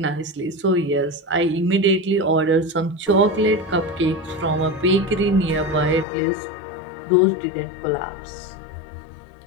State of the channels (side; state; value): right; drops out; at 6.1 s